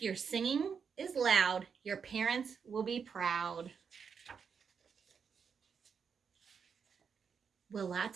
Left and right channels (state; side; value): quieter; left; 6.4 dB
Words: your singing is loud, your parents will be proud. Will